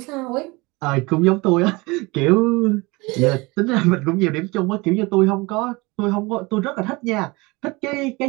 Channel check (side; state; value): left; quieter; 24.4 dB